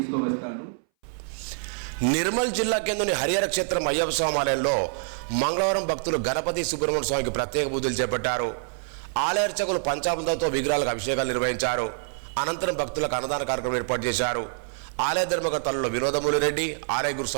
నిర్మల్ జిల్లా కేంద్రంలోని హరిహర క్షేత్రం అయ్యప్ప స్వామి ఆలయంలో మంగళవారం భక్తులు గణపతి సుబ్రహ్మణ్య స్వామికి ప్రత్యేక పూజలు చేపట్టారు. ఆలయ అర్చకులు పంచామృతంతో విగ్రహాలకు అభిషేకాలు నిర్వహించారు. అనంతరం భక్తులకు అన్నదాన కార్యక్రమం ఏర్పాటు చేశారు. ఆలయ ధర్మకర్తలలో వినోదమూలి రెడ్డి, ఆలయ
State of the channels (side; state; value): left; silent; 59 dB below the other